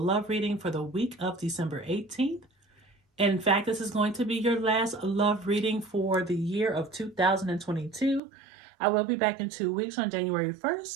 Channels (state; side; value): drops out; left; at 8.2 s